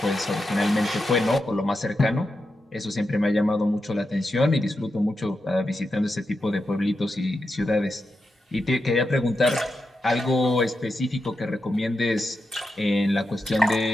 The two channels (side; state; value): both; normal; correlation 0.88